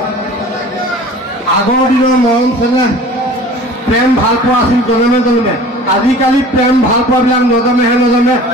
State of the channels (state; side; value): normal; both; correlation 0.44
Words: আগৰ দিনৰ মৰম চেনেহ প্ৰেম ভাল পোৱা আছিল জনমে জনমে আজিকালি প্ৰেম ভাল পোৱাবিলাক নজমে